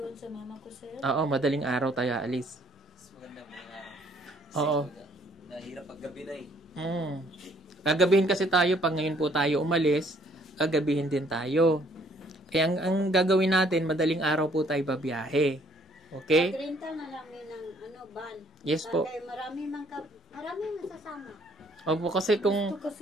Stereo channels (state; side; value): normal; both; correlation 0.63